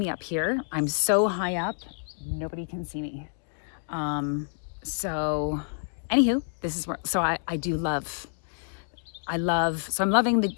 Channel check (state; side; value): silent; right; digital silence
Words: up here. I'm so high up, nobody can see me. So anywho, this is where, so I love, so I'm loving the